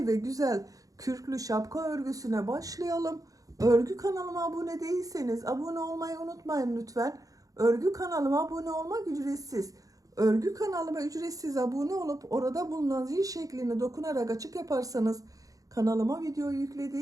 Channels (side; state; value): left; late; 0.17 ms